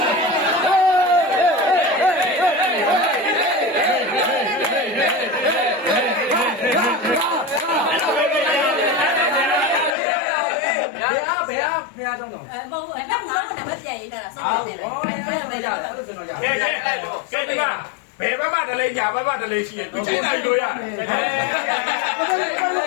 မဟုတ်အဲ့နောက်ကတော့နံပါတ်ပြန်ရေးတာစောင့်နေတယ်ဘယ်ရတယ်ကျွန်တော်ရကဲဒီမှာဘယ်ဘက်မှတလေးညာဘက်မှတလေးရှိရင်ဒီချိန်နိုင်လို့ရတယ်ကျွန်တော်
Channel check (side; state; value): right; drops out; at 10.0 s